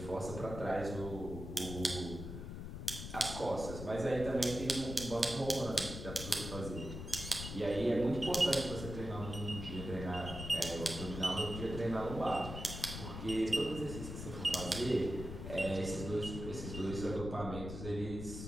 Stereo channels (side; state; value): left; noise; rumble, 7 dB below the sound